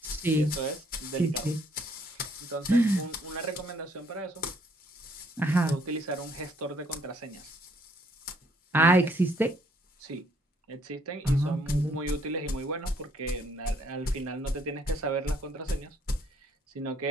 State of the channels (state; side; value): normal; both; correlation 0.66